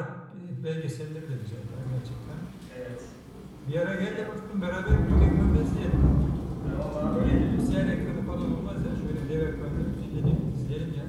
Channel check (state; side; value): identical; both; correlation 1.00